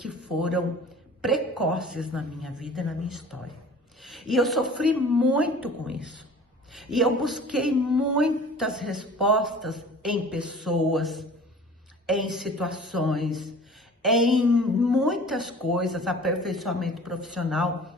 foram precoces na minha vida e na minha história. E eu sofri muito com isso. E eu busquei muitas respostas em pessoas, em situações, em muitas coisas, aperfeiçoamento profissional,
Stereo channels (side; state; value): both; normal; correlation 0.45